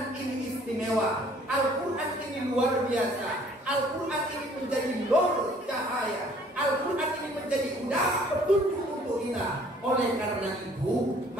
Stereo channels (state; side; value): normal; both; correlation 0.57